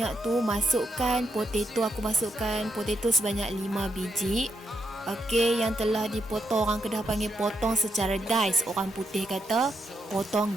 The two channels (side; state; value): both; normal; correlation 0.81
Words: tu, masukkan potato. Aku masukkan potato sebanyak 5 biji. Okey, yang telah dipotong, orang Kedah panggil potong secara dice, orang putih kata